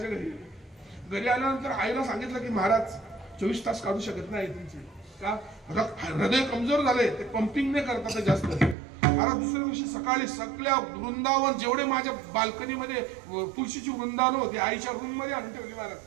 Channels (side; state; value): left; drops out; at 8.8 s